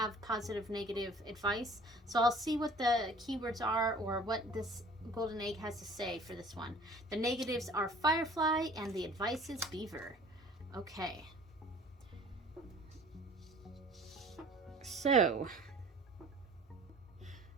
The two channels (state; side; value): normal; both; correlation 0.49